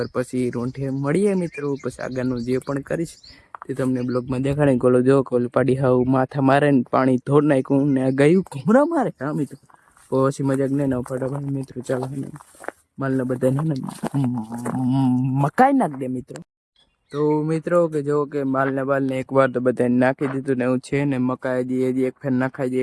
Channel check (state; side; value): identical; both; correlation 1.00